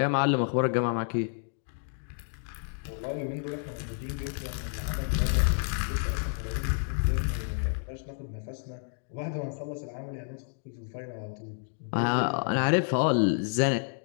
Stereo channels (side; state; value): right; silent; digital silence